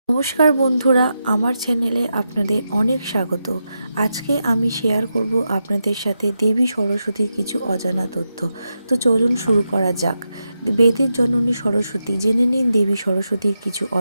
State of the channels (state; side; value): inverted; both; correlation -0.87